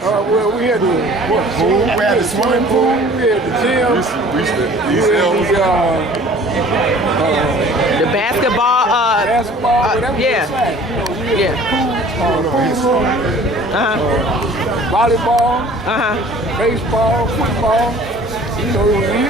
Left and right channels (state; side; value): normal; both; correlation 0.49